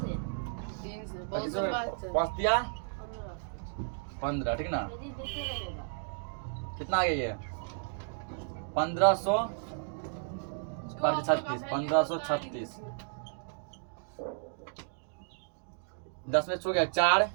5 दिया 15, ठीक ना, कितना आ गया ये 1536, 10 में छो गया 4,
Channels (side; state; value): left; silent; digital silence